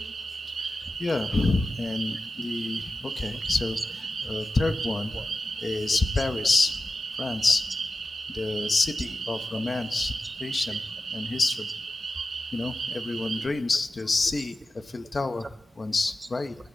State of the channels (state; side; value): normal; both; correlation 0.93